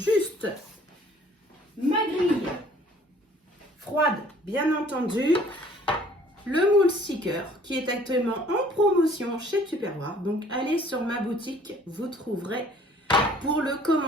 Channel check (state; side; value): normal; both; correlation 0.55